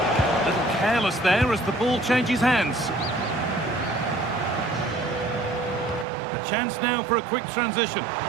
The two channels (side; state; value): left; drops out; at 6.1 s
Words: A little careless there as the ball changes hands. A chance now for a quick transition.